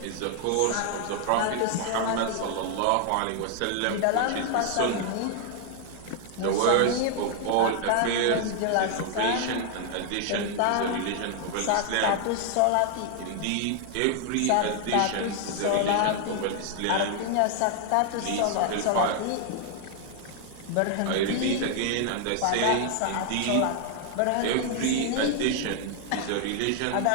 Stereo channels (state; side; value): different; both; correlation 0.00